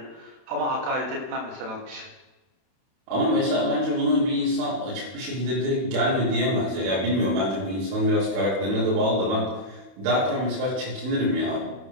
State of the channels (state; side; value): late; left; 31 ms